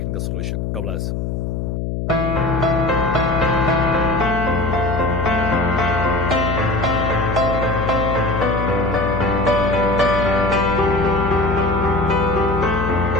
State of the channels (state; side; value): noise; left; hum, 3 dB below the sound